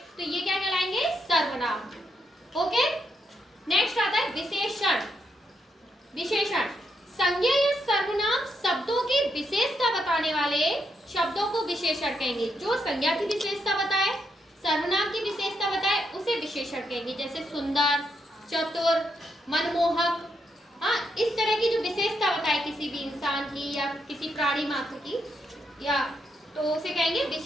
तो ये क्या कहलाएंगे? सर्वनाम। ओके, नेक्स्ट आता है विशेषण। विशेषण संज्ञा या सर्वनाम शब्दों की विशेषता बताने वाले शब्दों को विशेषण कहेंगे। जो संज्ञा की विशेषता बताए, सर्वनाम की विशेषता बताए, उसे विशेषण कहेंगे। जैसे सुंदर, चतुर, मनमोहक, हाँ, इस तरह की जो विशेषता बताए किसी भी इंसान की या किसी प्राणी मात्र की, या तो उसे कहेंगे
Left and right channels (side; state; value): both; normal; correlation 0.79